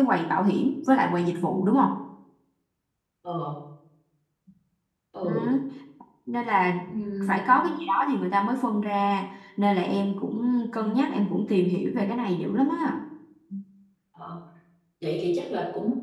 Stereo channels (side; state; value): both; identical; correlation 1.00